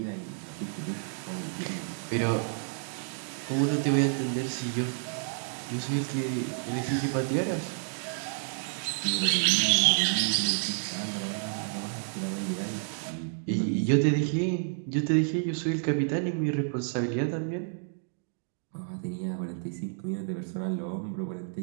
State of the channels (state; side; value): silent; left; digital silence